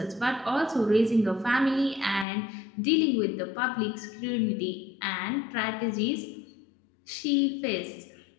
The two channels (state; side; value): drops out; right; at 2.2 s